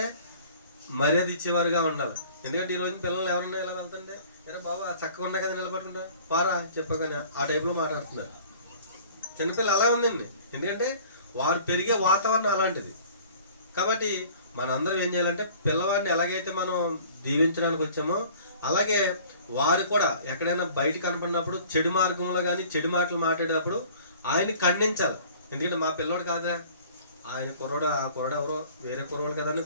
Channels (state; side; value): inverted; both; correlation -0.49